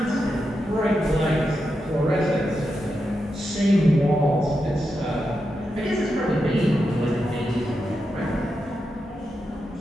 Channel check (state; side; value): normal; both; correlation 0.87